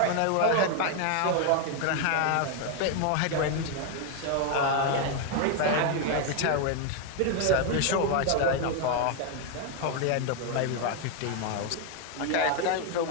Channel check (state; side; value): different; both; correlation 0.01